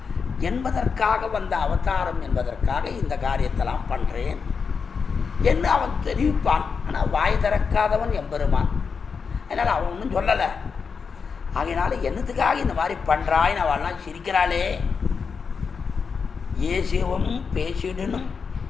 என்பதற்காக வந்த அவதாரம் என்பதற்காக இந்த காரியத்தெல்லாம் பண்ணுறேன் என்று அவன் தெரிவிப்பான். ஆனால் வாய் திறக்காதவன் எம்பெருமான். அதனால் அவன் ஒன்றும் சொல்லலை. ஆகையினால என்னத்துக்காக இந்த மாதிரி பண்ணுறாயின்னு அவள்லாம் சிரிக்கிறாளே. ஏசியவும் பேசிடணும்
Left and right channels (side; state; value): right; quieter; 5.6 dB